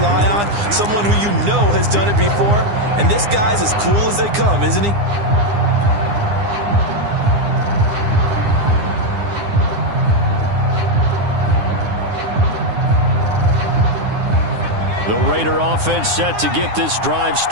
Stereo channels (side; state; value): left; late; 9.8 ms